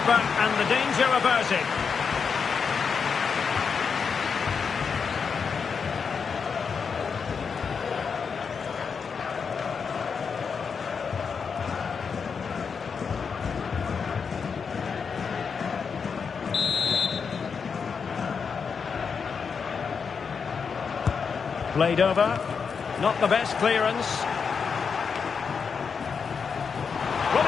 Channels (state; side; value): quieter; right; 5.9 dB